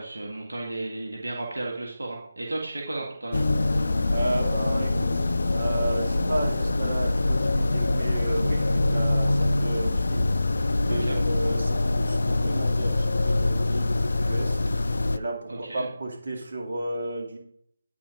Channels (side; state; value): both; inverted; correlation -0.95